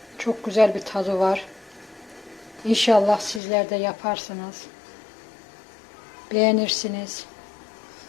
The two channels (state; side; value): drops out; right; at 3.4 s